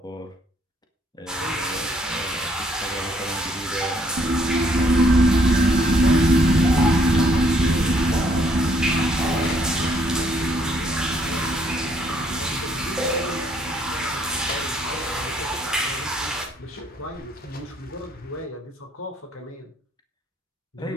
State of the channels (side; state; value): both; normal; correlation 0.67